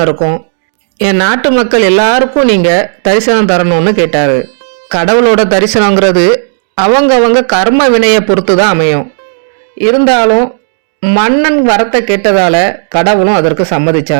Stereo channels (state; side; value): silent; left; digital silence